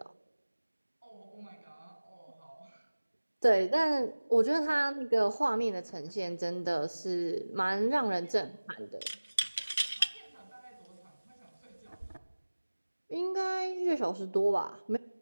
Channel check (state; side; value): inverted; both; correlation -1.00